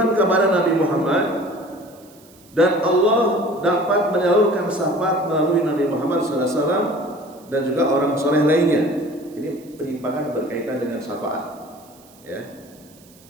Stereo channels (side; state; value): right; noise; hiss, 27 dB below the sound